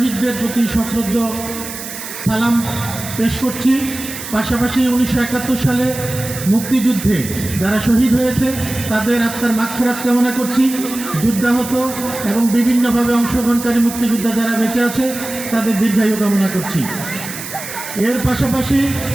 প্রতি সশ্রদ্ধ সালাম পেশ করছি। পাশাপাশি 1971 সালে মুক্তিযুদ্ধে যারা শহীদ হয়েছে তাদের আত্মার মাগফিরাত কামনা করছি। যুদ্ধাহত এবং বিভিন্নভাবে অংশগ্রহণকারী মুক্তিযোদ্ধা যারা বেঁচে আছে তাদের দীর্ঘায়ু কামনা করছি। এর পাশাপাশি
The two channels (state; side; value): noise; right; hiss, 10 dB below the sound